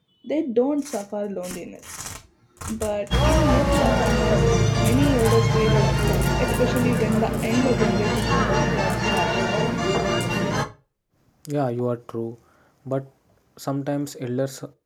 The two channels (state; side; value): identical; both; correlation 1.00